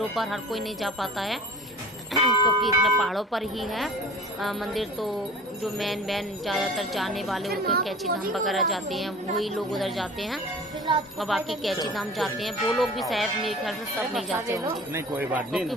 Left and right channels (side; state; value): both; normal; correlation 0.42